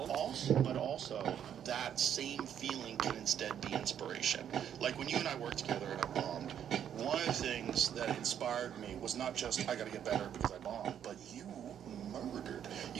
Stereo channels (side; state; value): left; quieter; 9.3 dB